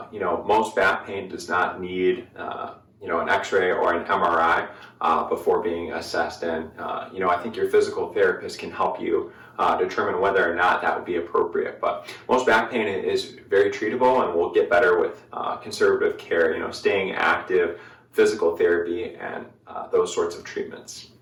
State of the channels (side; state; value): both; identical; correlation 1.00